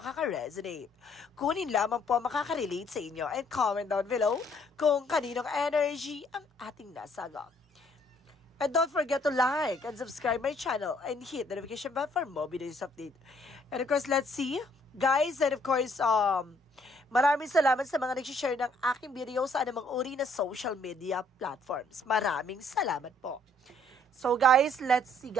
Kunin lamang po makaka-relate sa inyo and comment down below kung kaninong energy ang ating nasagap. And don't forget to like and subscribe my channel and hit the notification bell for more videos update. And of course, let's see, guys, and of course, maraming salamat sa mga nag-share ng aking video sa anumang uri na social media platforms. Maraming salamat po. So guys, let's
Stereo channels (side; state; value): both; normal; correlation 0.65